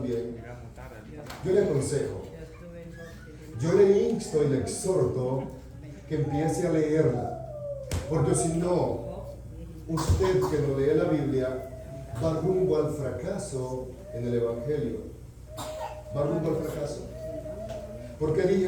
Yo le aconsejo, yo le insto y le exhorto que empiece a leerla, porque si no, usted que no lee la Biblia va rumbo al fracaso en el Evangelio. Va rumbo al fracaso. ¿Por qué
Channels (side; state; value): both; identical; correlation 1.00